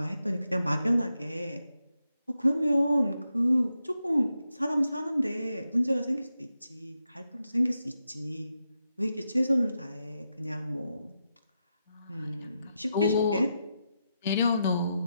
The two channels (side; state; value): both; inverted; correlation -0.86